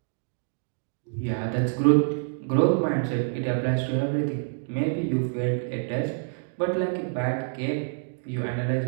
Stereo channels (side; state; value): left; silent; digital silence